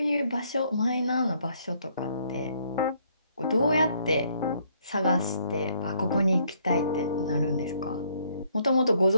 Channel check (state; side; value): inverted; both; correlation -0.67